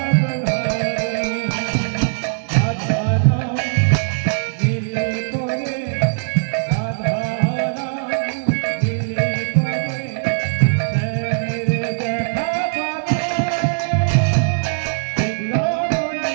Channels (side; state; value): left; silent; 55 dB below the other